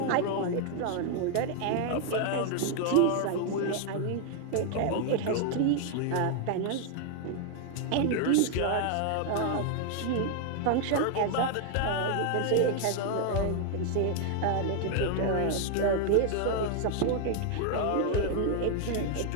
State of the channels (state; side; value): different; both; correlation 0.00